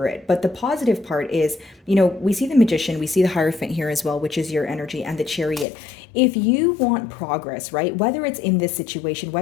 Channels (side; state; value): right; drops out; at 5.7 s